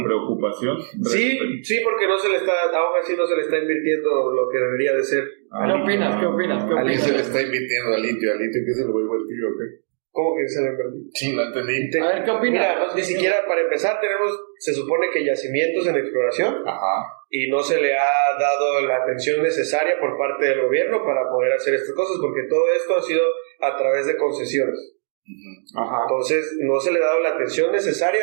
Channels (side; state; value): left; silent; digital silence